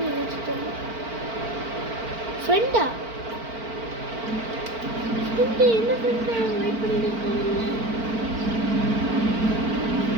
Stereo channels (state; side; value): late; left; 4.4 ms